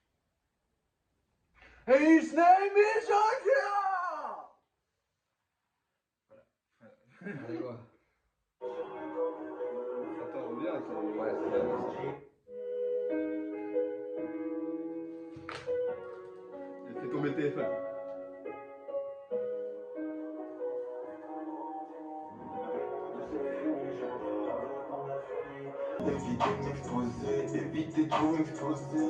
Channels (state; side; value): identical; both; correlation 1.00